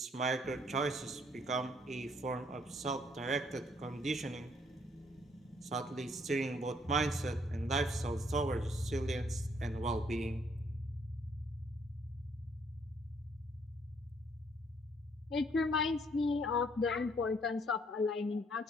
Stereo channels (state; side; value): normal; both; correlation 0.67